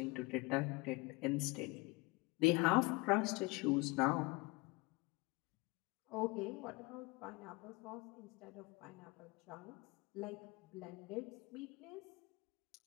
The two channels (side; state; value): right; quieter; 24.3 dB